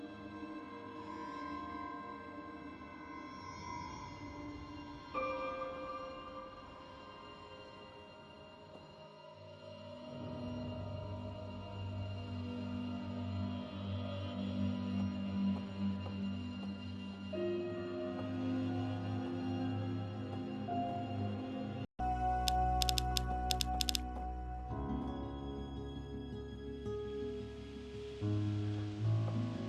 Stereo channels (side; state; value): both; identical; correlation 1.00